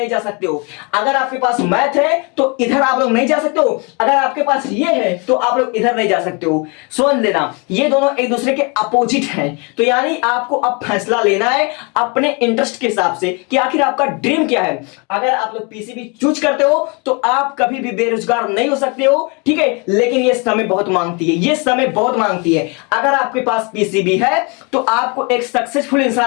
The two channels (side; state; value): right; quieter; 31.8 dB